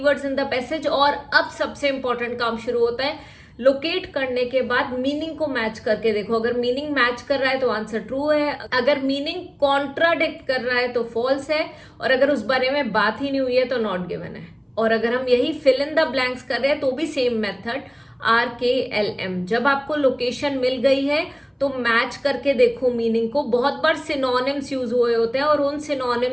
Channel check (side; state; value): both; identical; correlation 1.00